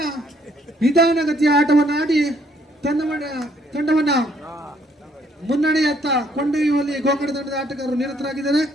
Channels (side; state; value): both; normal; correlation 0.67